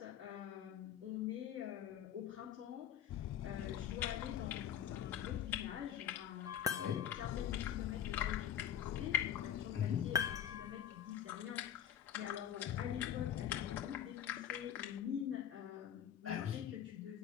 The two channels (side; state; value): right; quieter; 9.8 dB